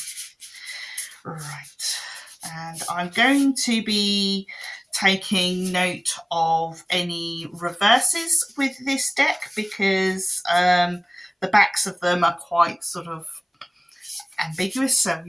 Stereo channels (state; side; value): identical; both; correlation 1.00